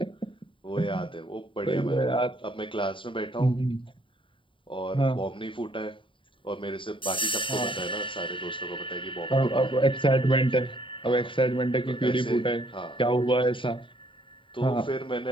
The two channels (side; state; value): right; late; 0.25 ms